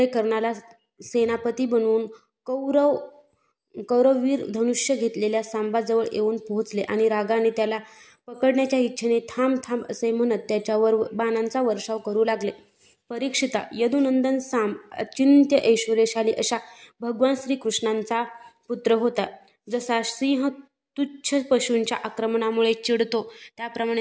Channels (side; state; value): both; identical; correlation 1.00